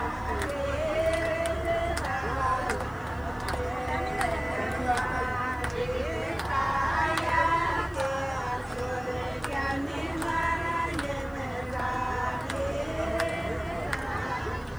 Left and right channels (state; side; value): noise; left; hiss, 28 dB below the sound